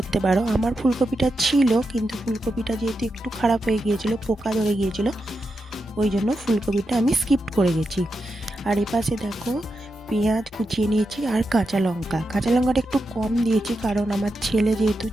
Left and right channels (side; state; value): both; normal; correlation 0.87